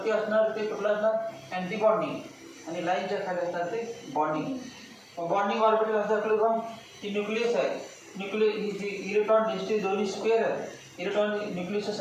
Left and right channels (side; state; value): both; identical; correlation 1.00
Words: असणार ते कुठलं असणार? Anti bonding. आणि लाईनच्या खाली असणार ते बॉन्डिंग. बॉन्डिंग ऑर्बिटल असं असलं का ती न्यूक्लियस आहे. ही जी इलेक्ट्रॉन डेन्सिटी दोन्ही स्क्वेअर आहे. इलेक्ट्रॉन न्यूक्लियसच्या